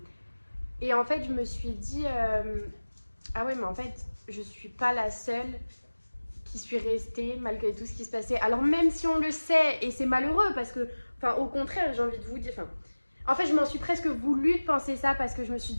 en fait je me suis dit ah ouais mais en fait je suis pas la seule qui suis restée malgré tout ce qui se passait. Alors même si on le sait et c'est malheureux parce que enfin, au contraire, j'ai envie de vous dire. Enfin, en fait, je m'en suis presque voulu de penser ça parce que je me suis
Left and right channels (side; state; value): both; inverted; correlation -1.00